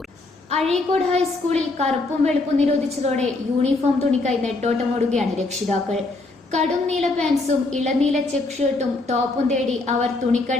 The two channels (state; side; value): quieter; right; 3.2 dB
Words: Azhikode ഹൈസ്കൂളിൽ കറുപ്പും വെളുപ്പും നിരോധിച്ചതോടെ യൂണിഫോം തുണിക്കായി നെട്ടോട്ടമോടുകയാണ് രക്ഷിതാക്കൾ. കടും നീല പാൻസും ഇളനീല ചെക്ക് ഷർട്ടും ടോപ്പും തേടി അവർ